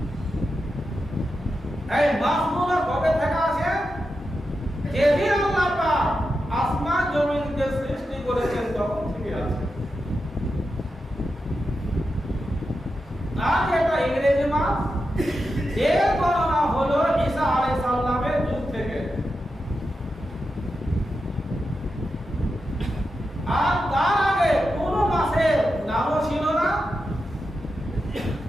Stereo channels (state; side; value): normal; both; correlation 0.89